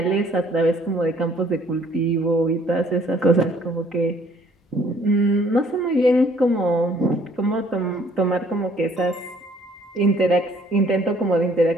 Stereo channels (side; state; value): both; normal; correlation 0.60